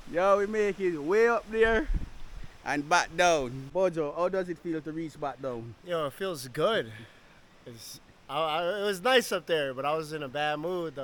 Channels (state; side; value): identical; both; correlation 1.00